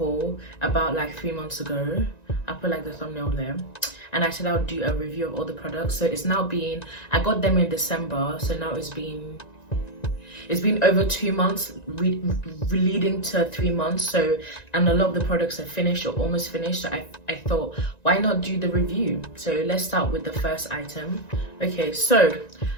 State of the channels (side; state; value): right; late; 1.9 ms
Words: about like 3 months ago. I'll put like the thumbnail there, and I said I would do a review of all the products. So it's now been, I got them in December, so now it's been over 2 months, leading to 3 months. So, and a lot of the products are finished or almost finished. So I thought, why not do the review? So let's start with the first item. Okay, so